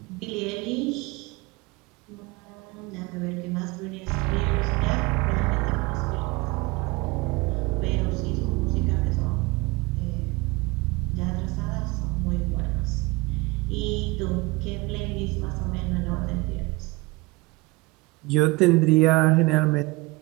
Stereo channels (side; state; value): left; quieter; 23.7 dB